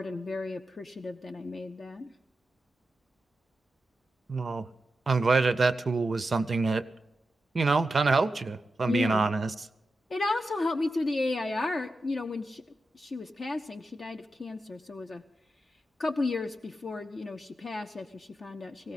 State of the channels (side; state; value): both; normal; correlation 0.90